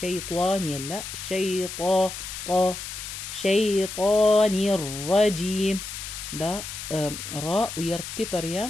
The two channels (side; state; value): left; noise; hiss, 8 dB below the sound